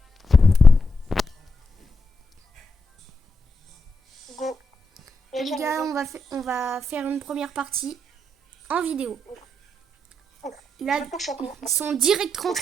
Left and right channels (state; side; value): normal; both; correlation 0.83